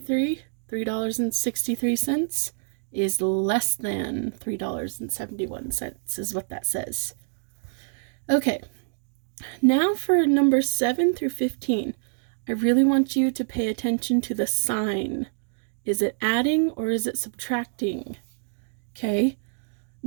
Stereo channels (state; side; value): silent; left; digital silence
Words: is less than $3.71 is what that says. Okay, now for number 7 through 15. I really want you to pay attention to the sign. Is it adding or is it subtracting? Okay,